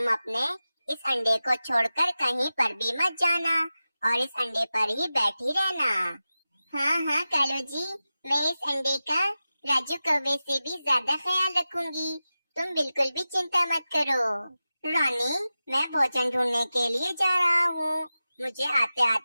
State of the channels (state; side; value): inverted; both; correlation -0.94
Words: अपने इस अंडे को छोड़कर कहीं पर भी मत जाना और इस अंडे पर ही बैठी रहना। हाँ हाँ कालू जी, मैं इस अंडे का राजू कौवे से भी ज्यादा ख्याल रखूंगी। तुम बिल्कुल भी चिंता मत करो। रानी, मैं भोजन ढूंढने के लिए जा रहा हूँ। मुझे आते